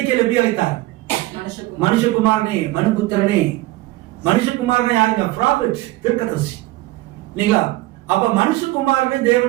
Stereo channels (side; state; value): left; quieter; 18.3 dB